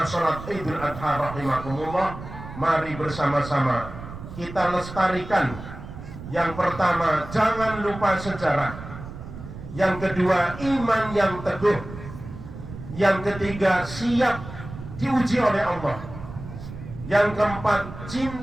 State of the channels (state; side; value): noise; right; rumble, 12 dB below the sound